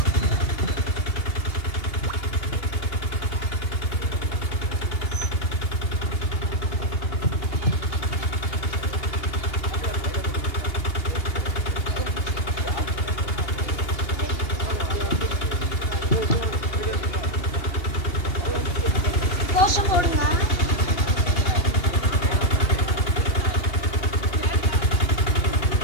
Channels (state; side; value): late; right; 2.8 ms